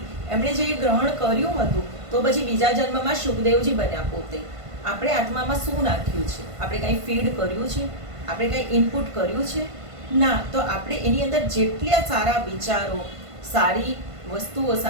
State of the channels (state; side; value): late; left; 1.5 ms